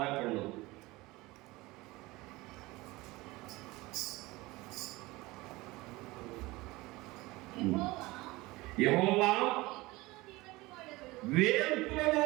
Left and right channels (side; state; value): left; quieter; 21.0 dB